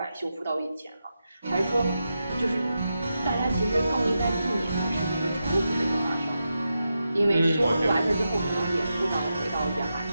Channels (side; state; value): both; inverted; correlation -0.88